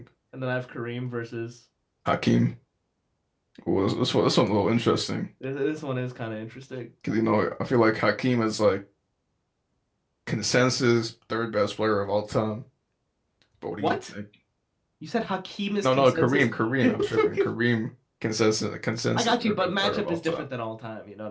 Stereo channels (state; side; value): identical; both; correlation 1.00